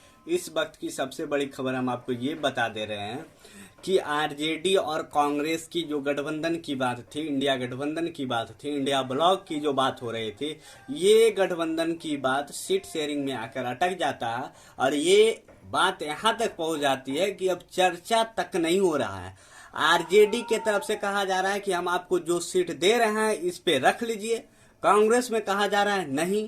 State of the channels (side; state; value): both; identical; correlation 1.00